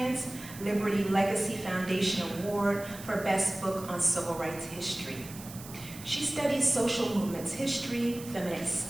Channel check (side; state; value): right; noise; hiss, 15 dB below the sound